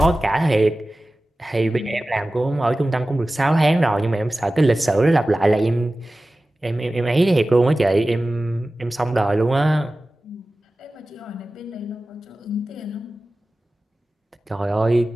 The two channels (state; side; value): normal; both; correlation 0.96